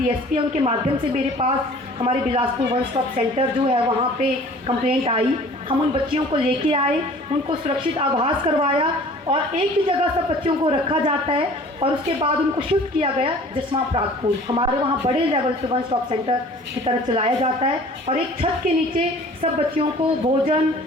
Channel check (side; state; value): both; normal; correlation 0.48